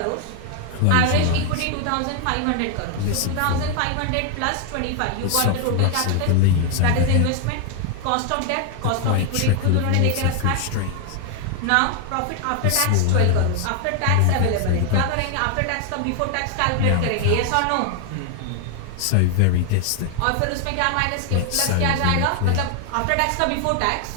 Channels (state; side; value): different; both; correlation 0.00